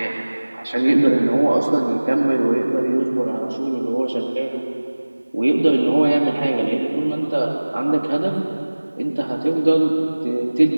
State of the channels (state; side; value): inverted; both; correlation -1.00